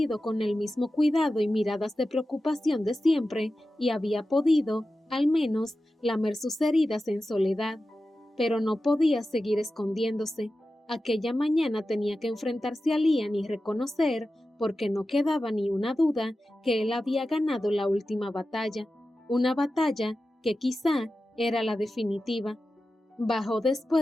con el mismo cuidado y miradas de preocupación de siempre y había podido, al menos, lamer sus heridas en soledad. Pero no podía seguir escondiéndose. Aquella mañana tenía que enfrentarse a Liam y reconocer, porque no quedaba ni una duda, que él había ganado la última batalla. Una batalla que quizá era la definitiva. Bajó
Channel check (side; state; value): both; normal; correlation 0.93